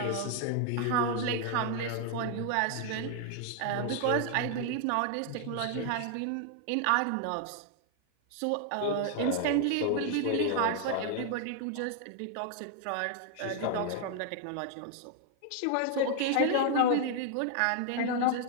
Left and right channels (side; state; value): both; different; correlation 0.00